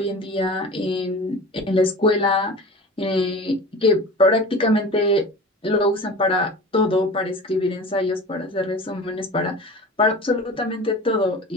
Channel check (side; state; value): both; normal; correlation 0.36